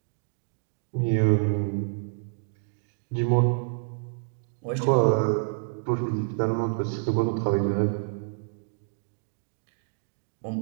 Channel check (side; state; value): left; silent; digital silence